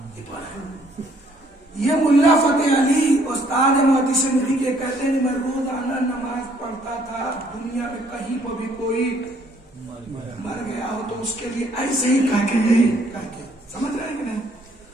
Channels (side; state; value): both; normal; correlation 0.64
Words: یہ ملا فتح علی استاد محدث نبی کے کہتے ہیں میں روزانہ نماز پڑھتا تھا، دنیا میں کہیں پر بھی کوئی مر گیا ہو تو اس کے لیے ایسے ہی کہہ کے یہی کہہ کے، سمجھ رہے ہیں کہ نہیں؟